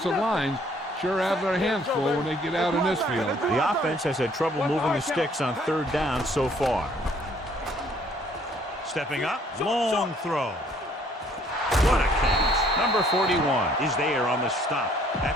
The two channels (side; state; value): both; normal; correlation 0.62